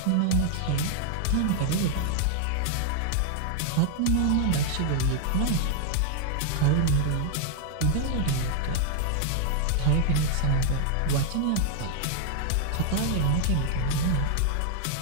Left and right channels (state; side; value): different; both; correlation 0.00